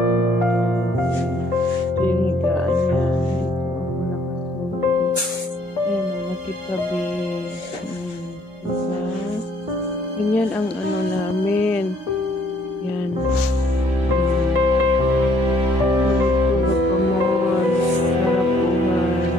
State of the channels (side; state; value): both; normal; correlation 0.64